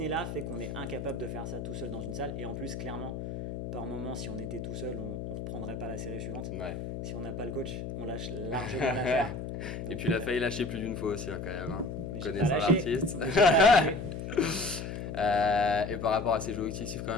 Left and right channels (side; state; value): left; noise; hum, 6 dB below the sound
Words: fait qu'on est incapable de faire ça tout seul dans une salle. Et en plus, clairement, par moment, si on était tout seul, on ne reprendrait pas la série suivante. Si on n'a pas le coach, on lâche largement l'affaire. Et puis il a failli lâcher plus d'une fois aussi là, quand même, hein. Connaissant l'artiste. Et par rapport à ses objectifs quand